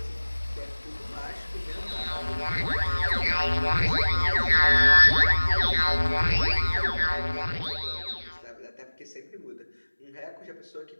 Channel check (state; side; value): inverted; both; correlation -1.00